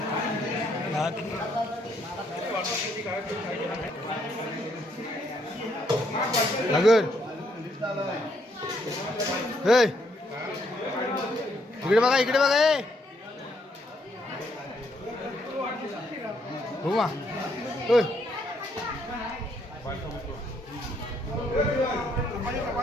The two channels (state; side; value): normal; both; correlation 0.72